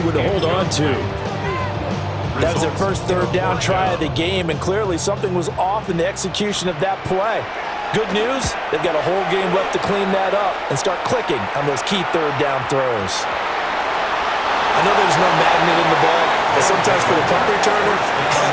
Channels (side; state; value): both; identical; correlation 1.00